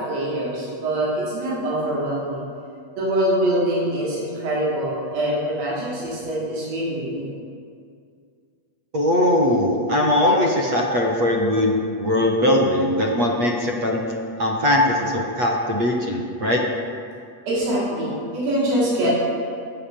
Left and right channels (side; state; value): left; late; 8.3 ms